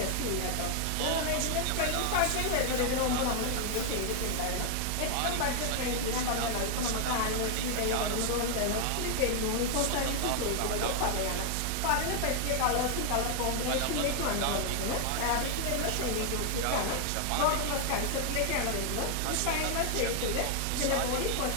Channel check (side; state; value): both; different; correlation 0.00